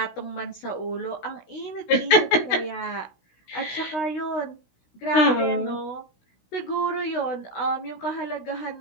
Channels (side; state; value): right; late; 16 ms